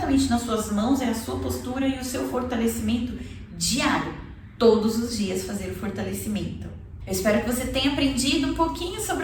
nas suas mãos é a sua postura e o seu fortalecimento diário. Todos os dias fazer o fortalecimento. Eu espero que você tenha aprendido um pouquinho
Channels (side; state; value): both; identical; correlation 1.00